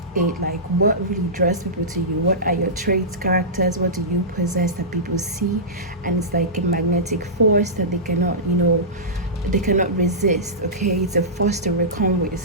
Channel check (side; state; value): both; normal; correlation -0.17